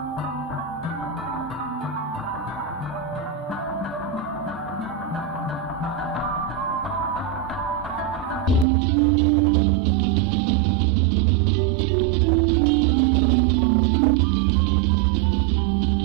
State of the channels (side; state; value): left; drops out; at 8.7 s